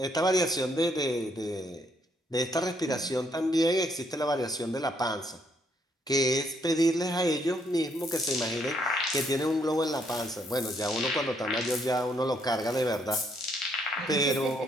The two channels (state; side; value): normal; both; correlation 0.71